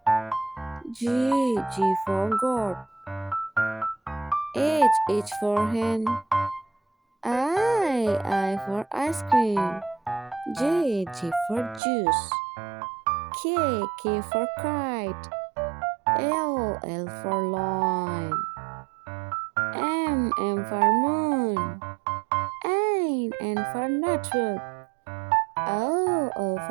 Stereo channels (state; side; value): drops out; left; at 11.8 s